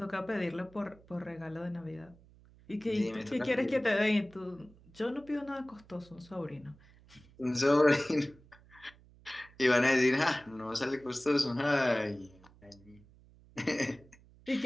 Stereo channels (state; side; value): noise; right; hum, 25 dB below the sound